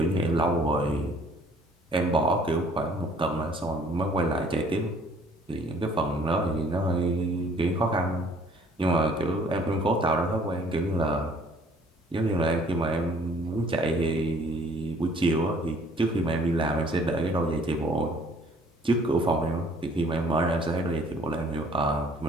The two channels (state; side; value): normal; both; correlation 0.57